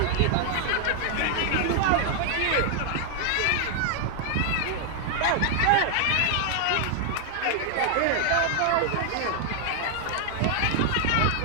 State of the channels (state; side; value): different; both; correlation 0.00